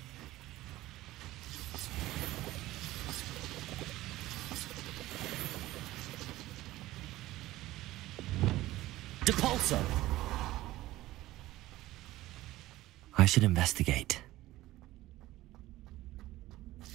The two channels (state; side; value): quieter; left; 16.7 dB